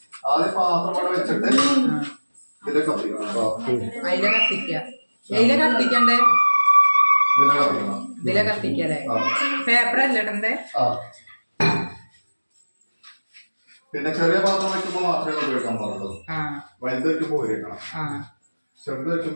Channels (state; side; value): inverted; both; correlation -1.00